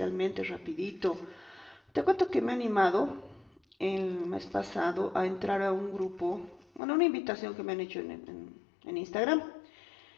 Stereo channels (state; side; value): drops out; right; at 6.8 s